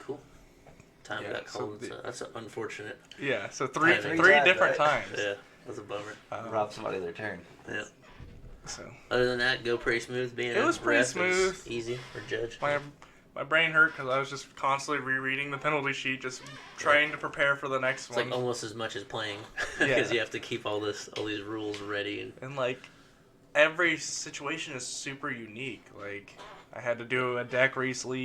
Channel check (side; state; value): both; identical; correlation 1.00